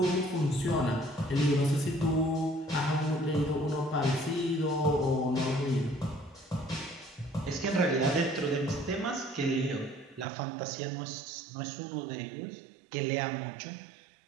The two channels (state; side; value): drops out; left; at 10.2 s